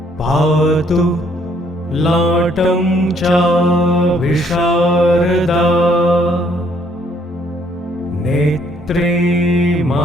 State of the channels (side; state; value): both; normal; correlation 0.66